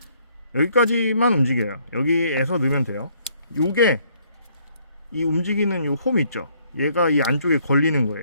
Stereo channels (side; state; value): both; inverted; correlation -0.66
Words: 여기까지만 움직여요. 여기에서 넣으면 돼요. 요게 이 움직이는 요 홈 있죠? 얘가 이 안쪽에 걸리는